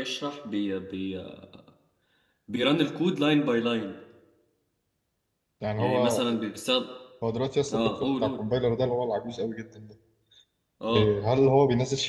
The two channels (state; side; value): identical; both; correlation 1.00